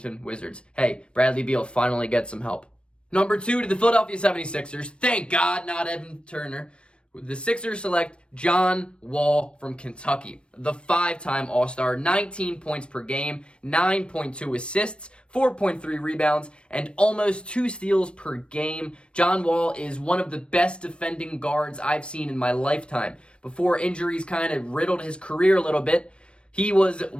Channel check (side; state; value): right; late; 0.058 ms